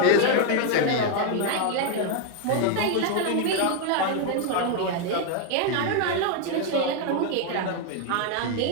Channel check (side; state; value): both; different; correlation 0.01